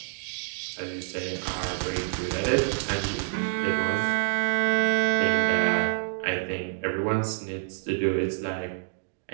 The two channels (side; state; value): left; silent; digital silence